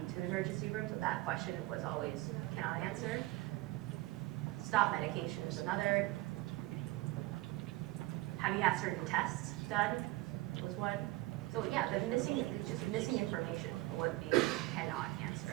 to the emergency room, so that question was always cannot answer. Stop medication is another. Have you had certain tests done was one. So yeah, the just missing information would be cannot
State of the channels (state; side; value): quieter; left; 19.2 dB